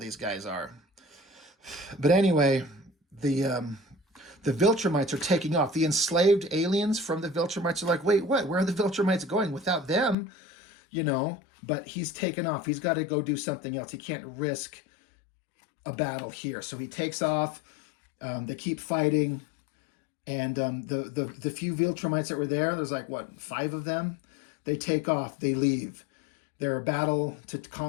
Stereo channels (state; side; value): drops out; right; at 10.2 s